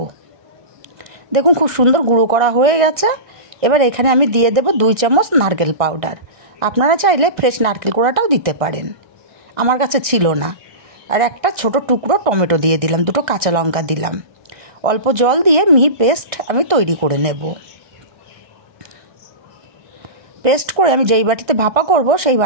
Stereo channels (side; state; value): left; late; 1.6 ms